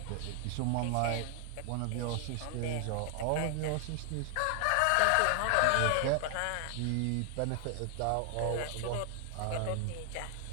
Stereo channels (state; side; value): different; both; correlation 0.00